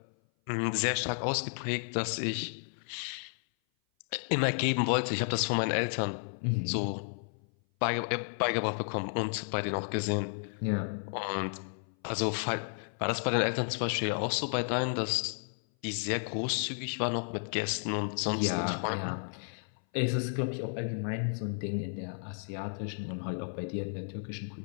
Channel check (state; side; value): silent; right; 56 dB below the other